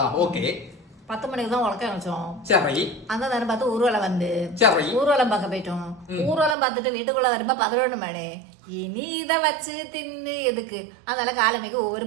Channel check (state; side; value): drops out; left; at 6.6 s